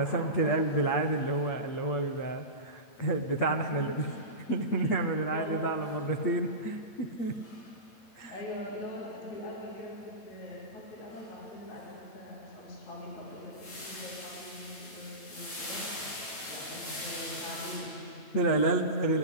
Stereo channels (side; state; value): right; late; 9.0 ms